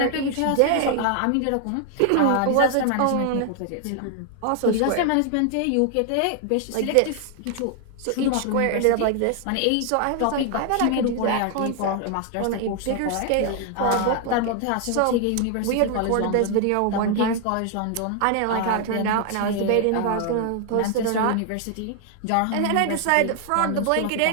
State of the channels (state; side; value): different; both; correlation 0.00